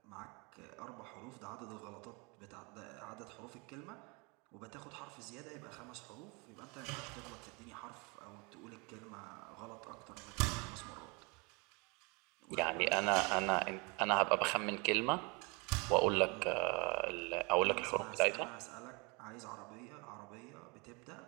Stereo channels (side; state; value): left; quieter; 29.7 dB